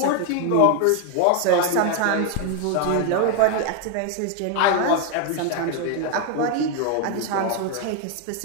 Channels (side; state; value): both; different; correlation 0.01